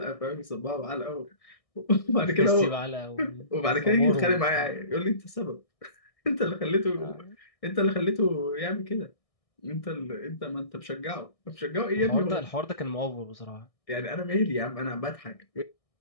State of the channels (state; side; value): late; right; 1.6 ms